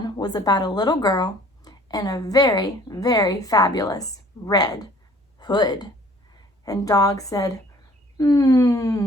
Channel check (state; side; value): normal; both; correlation 0.54